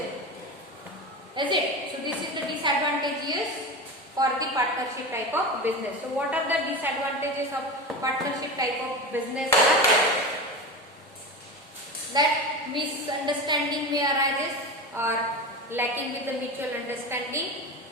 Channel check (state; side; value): normal; both; correlation 0.25